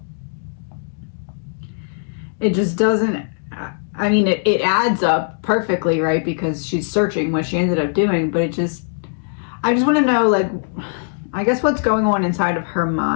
it just doesn't, I mean, it adds up perfectly, right? Because she's searching what she ended up doing, but I just want to know, like, I guess what's going on inside of her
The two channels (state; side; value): silent; right; digital silence